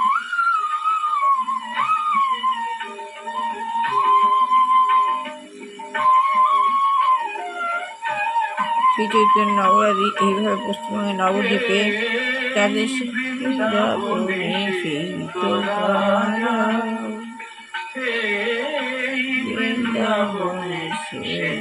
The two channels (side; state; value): both; identical; correlation 1.00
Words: শ্রী চৈতন্য নগরাদি এইভাবে পশ্চিমবঙ্গের নবদ্বীপে তাদের বৃন্দাবনে সেই তো বৃন্দাবনে সেই